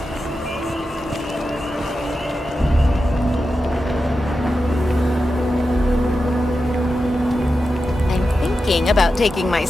About taking my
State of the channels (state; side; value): normal; both; correlation 0.90